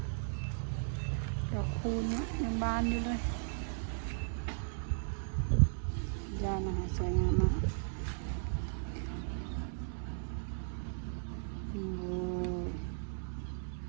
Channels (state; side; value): silent; left; 53 dB below the other